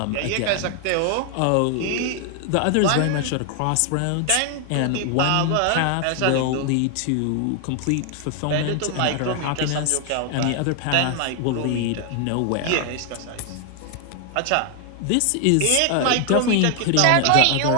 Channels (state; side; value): different; both; correlation 0.00